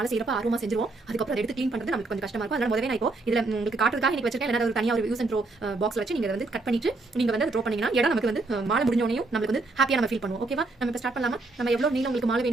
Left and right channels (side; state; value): left; quieter; 3.3 dB